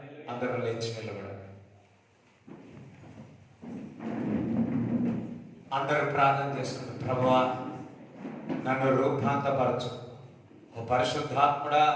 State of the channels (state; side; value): identical; both; correlation 1.00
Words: అందరూ లేచి నిలబడండి. అందరూ ప్రార్థన చేసుకుంటారు. ప్రభువా, నన్ను రూపాంతరపరచు. ఓ పరిశుద్ధాత్ముడా,